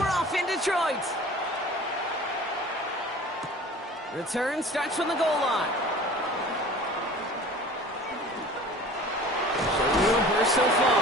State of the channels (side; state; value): both; normal; correlation 0.43